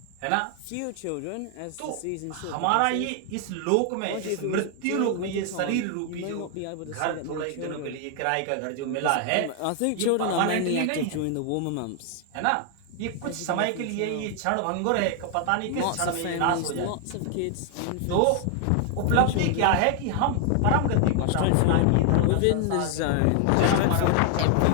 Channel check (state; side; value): different; both; correlation 0.00